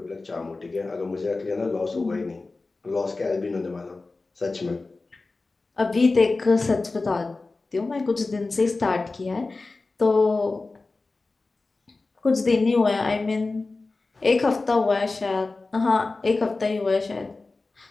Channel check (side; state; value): right; quieter; 3.6 dB